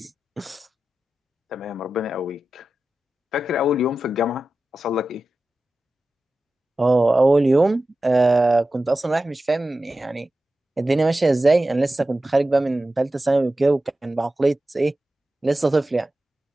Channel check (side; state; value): both; normal; correlation 0.94